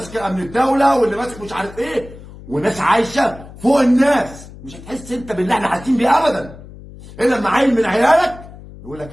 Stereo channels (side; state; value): left; noise; hum, 17 dB below the sound